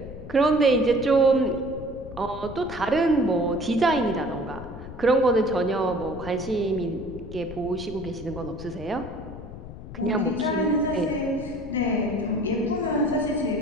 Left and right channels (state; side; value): noise; left; rumble, 13 dB below the sound